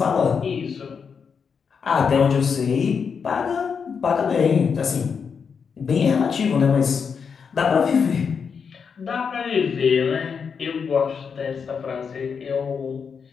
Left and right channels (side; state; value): right; quieter; 6.2 dB